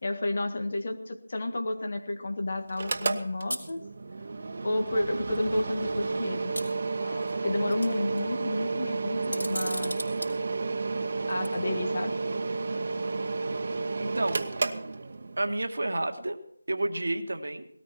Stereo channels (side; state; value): both; inverted; correlation -0.95